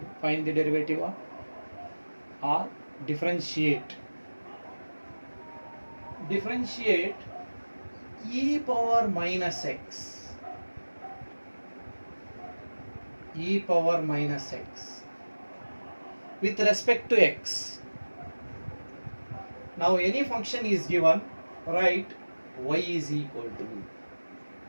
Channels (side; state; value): both; inverted; correlation -1.00